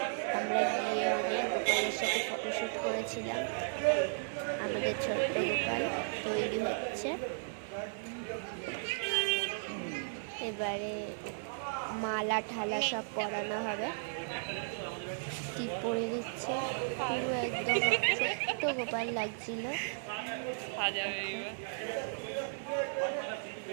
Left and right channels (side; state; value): left; silent; 54 dB below the other